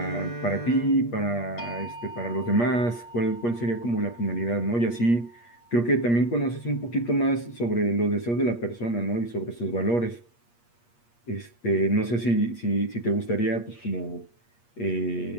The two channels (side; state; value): right; late; 8.5 ms